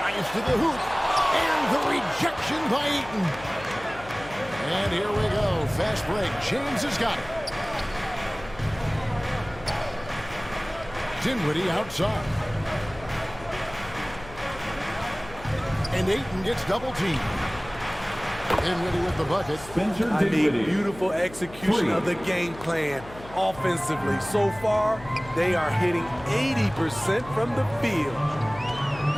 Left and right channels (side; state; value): left; noise; hum, 17 dB below the sound